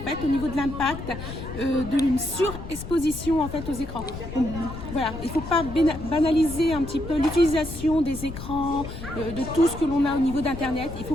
au niveau de l'impact d'une surexposition en fait aux écrans. Donc, voilà, il ne faut pas banaliser un petit peu l'utilisation des écrans, de tout ce que l'on a au niveau d'Internet. Il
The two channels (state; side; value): noise; left; rumble, 10 dB below the sound